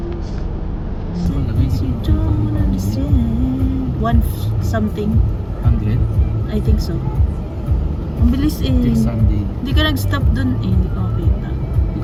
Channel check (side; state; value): both; identical; correlation 1.00